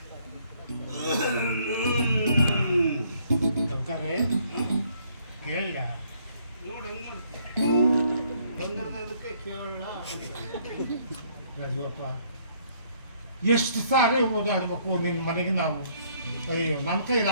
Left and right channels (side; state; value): both; inverted; correlation -0.65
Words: ಕೇಳ ನೋಡಿ ಹೆಂಗ್ ಬಂದಿರೋದು ಅದಕ್ಕೆ ಕೇಳೋಣ. ರಾಜೀವಪ್ಪ, ಎಷ್ಟು ಸಾರಿ ಓಡಾಡ್ಬೇಕು ನಿನ್ನ ಮನೆಗೆ ನಾವು? ಅಯ್ಯೋ, ನನ್ನ ಕೈಲಿ